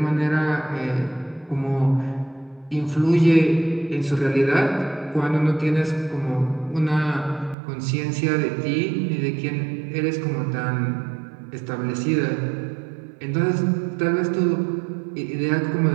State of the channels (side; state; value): left; drops out; at 7.6 s